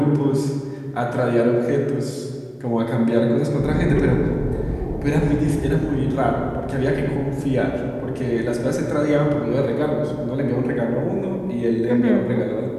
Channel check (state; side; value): identical; both; correlation 1.00